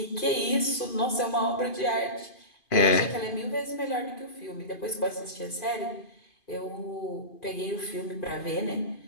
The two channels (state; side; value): late; right; 2.5 ms